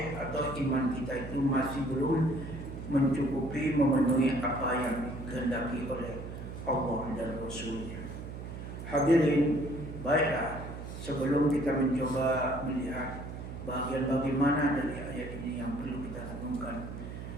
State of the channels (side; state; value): right; noise; hum, 9 dB below the sound